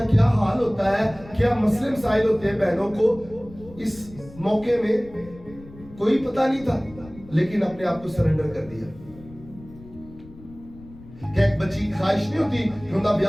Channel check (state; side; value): noise; left; rumble, 19 dB below the sound